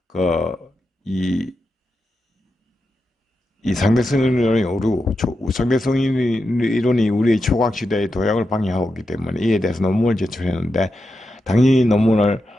이 상대성 이론이 상대성 이론이 우리의 초과학 시대의 도약을 방해하고 있기 때문에 이에 대해서 논문을 제출했는데 당연히 논문을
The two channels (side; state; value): both; normal; correlation 0.88